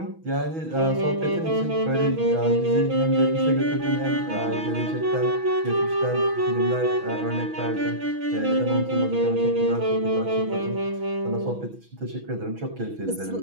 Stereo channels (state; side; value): late; left; 6.1 ms